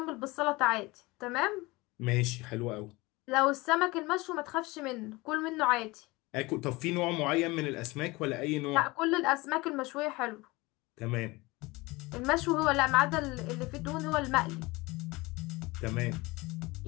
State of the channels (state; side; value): quieter; right; 22.6 dB